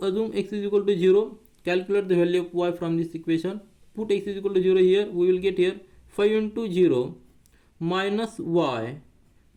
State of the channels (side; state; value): both; identical; correlation 1.00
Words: assume x is equal to 0, calculate the value of y from this equation, put x is equal to 0 here, we will get here 5 into 0 minus y